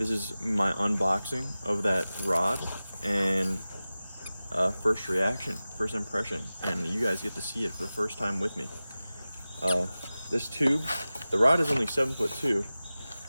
is my unboxing of that rod and first reaction, first impression, and you guys get to see it for the first time with me. This tube, the rod is only 7'2",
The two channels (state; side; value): inverted; both; correlation -0.96